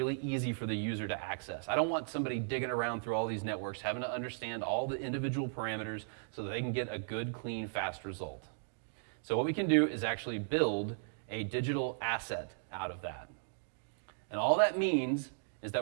easy for the user to access. I don't want somebody digging around through all these networks, having to understand all the individual parameters so that they can get a good, clean, fast result. So what we can do is actually build a digital asset out of that. And all that means is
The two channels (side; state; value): left; silent; digital silence